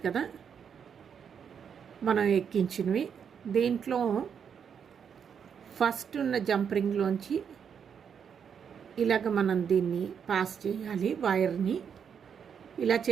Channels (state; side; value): quieter; left; 7.4 dB